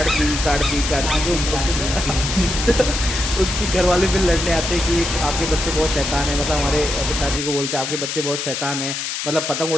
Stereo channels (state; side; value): noise; left; hiss, 4 dB below the sound